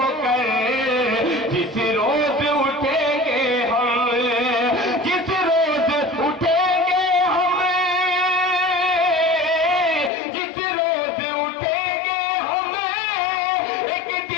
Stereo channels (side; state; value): right; drops out; at 10.1 s